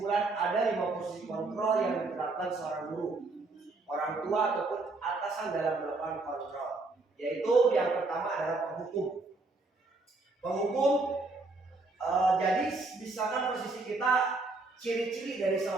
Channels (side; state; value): left; quieter; 3.4 dB